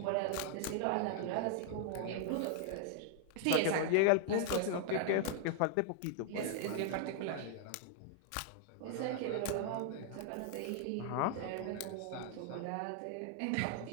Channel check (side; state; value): both; different; correlation 0.00